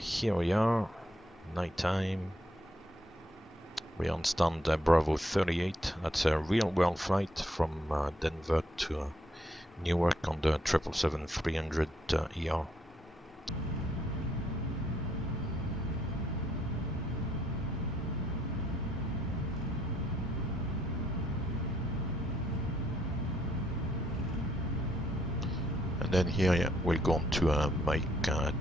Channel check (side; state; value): both; normal; correlation 0.72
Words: we are, nighttime. We're on stand Bravo 38. That's a real-world flight from Denver to Newark on the 777-300ER. And then here, yeah, we'll go on to Mike